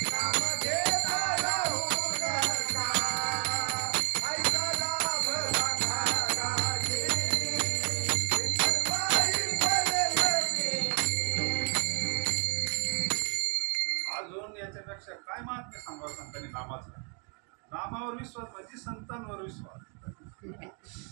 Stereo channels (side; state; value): left; quieter; 38.8 dB